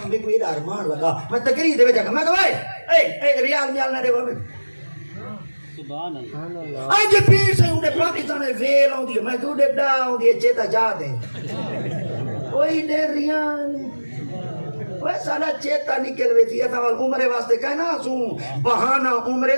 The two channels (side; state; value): both; inverted; correlation -1.00